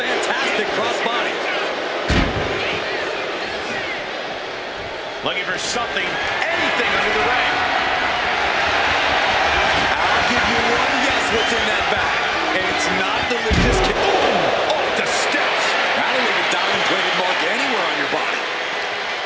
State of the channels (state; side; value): identical; both; correlation 1.00